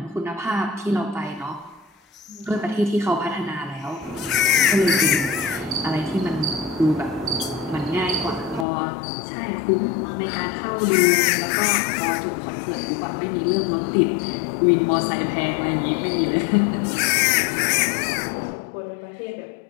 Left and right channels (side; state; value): right; drops out; at 8.7 s